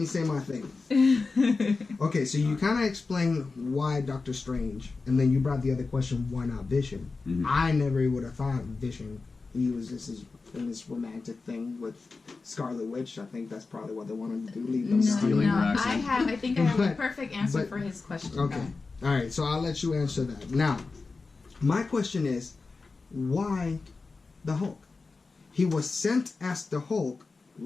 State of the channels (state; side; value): quieter; right; 4.1 dB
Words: say my thing. Okay, so you kind of explained why Doctor Strange, and then you brought the other question, why not Vision? Mm-hmm. I never would have thought Vision. He was in this romantic thing with Scarlet Witch. I think that's probably what they wanted to do. Leave them stealing her accent. I think I have a perfect answer for his question. Okay. All right. So I'll let you answer that. Now, my question is, why the Hulk? He was sent as the Hulk,